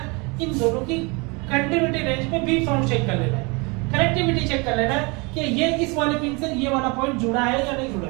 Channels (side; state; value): left; quieter; 28.8 dB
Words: इन दोनों की कंडक्टिविटी रेंज पे बीप साउंड चेक कर लेना है, कनेक्टिविटी चेक कर लेना है कि ये इस वाले पिन से ये वाला पॉइंट जुड़ा है या नहीं जुड़ा